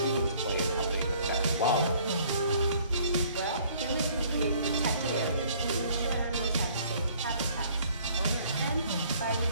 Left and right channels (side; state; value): both; inverted; correlation -0.58